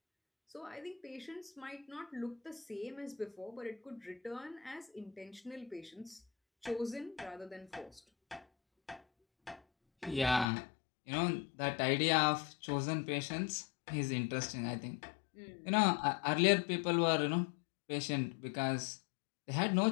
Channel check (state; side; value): drops out; right; at 10.5 s